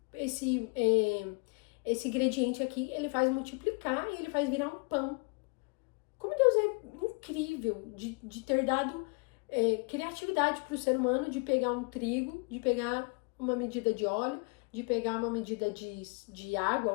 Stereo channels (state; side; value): quieter; right; 33.0 dB